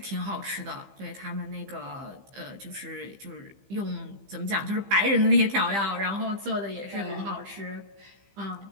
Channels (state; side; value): late; left; 15 ms